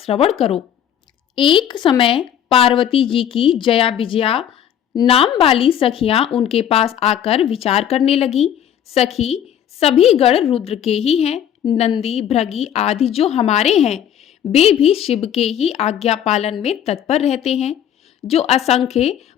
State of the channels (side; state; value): right; quieter; 9.7 dB